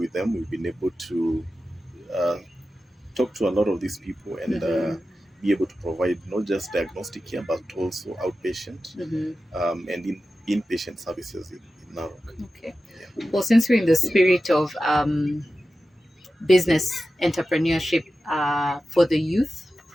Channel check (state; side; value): normal; both; correlation 0.93